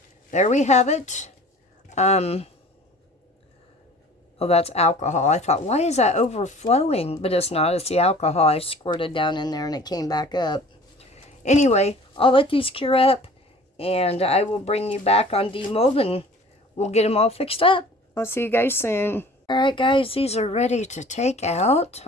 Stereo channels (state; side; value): normal; both; correlation 0.47